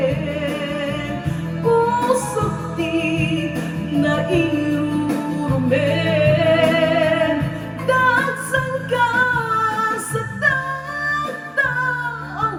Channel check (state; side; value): identical; both; correlation 1.00